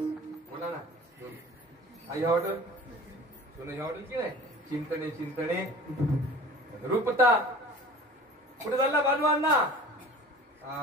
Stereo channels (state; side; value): normal; both; correlation 0.42